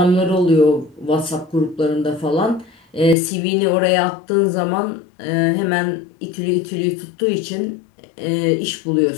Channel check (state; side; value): drops out; right; at 3.2 s